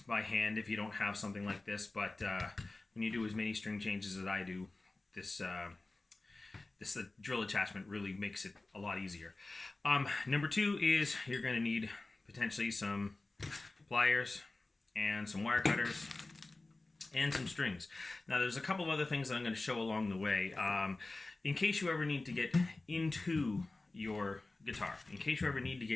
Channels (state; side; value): quieter; right; 3.1 dB